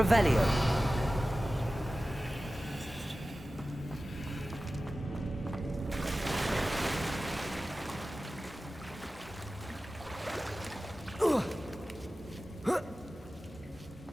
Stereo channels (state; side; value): normal; both; correlation 0.95